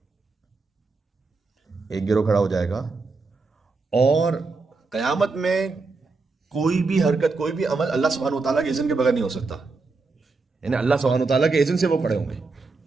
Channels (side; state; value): left; quieter; 4.0 dB